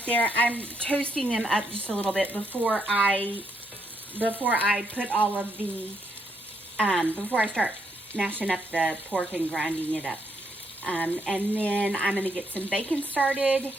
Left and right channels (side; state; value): both; normal; correlation 0.76